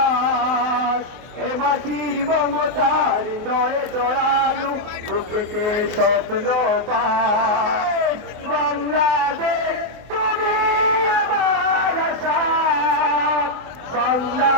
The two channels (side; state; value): left; late; 24 ms